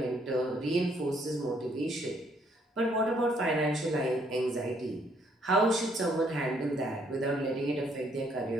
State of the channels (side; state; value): both; normal; correlation 0.68